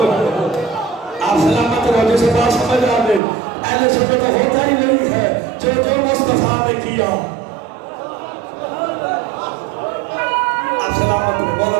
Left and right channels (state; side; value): drops out; left; at 3.2 s